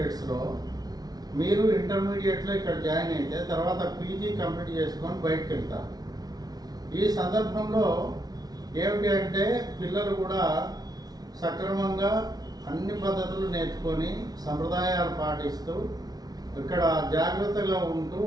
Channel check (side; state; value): left; late; 0.19 ms